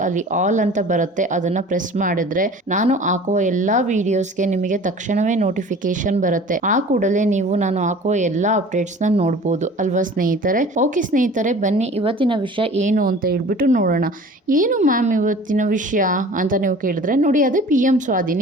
ಅಲ್ಲಿ ಆಲ್ ಅಂತ ಬರುತ್ತೆ, ಅದನ್ನ ಪ್ರೆಸ್ ಮಾಡಿದ್ರೆ ನಾನು ಹಾಕುವ ಎಲ್ಲಾ ವಿಡಿಯೋಸ್ಗೆ ನಿಮಗೆ ತಕ್ಷಣವೇ ನೋಟಿಫಿಕೇಶನ್ ಬರುತ್ತೆ. ಆ ಕೂಡಲೇ ನೀವು ನಾನು ಹಾಕುವ ಎಲ್ಲಾ ಅಪ್ಡೇಟ್ಸ್ ನ ನೋಡಬಹುದು ಅಲ್ವಾ ಸ್ನೇಹಿತರೆ. ಓಕೆ ಸ್ನೇಹಿತರೆ, ಬನ್ನಿ ಇವತ್ತಿನ ವಿಷಯ ಏನು ಅಂತ ಹೇಳ್ಬಿಟ್ಟು ನೋಡೋಣ. ಏನು ಮ್ಯಾಮ್ ಇವತ್ತಿನ ವಿಷಯ ಅಂತ ನೀವು ಕೇಳಿದ್ರೆ, ನೋಡಿ ಅದೇ PM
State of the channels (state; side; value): normal; both; correlation 0.44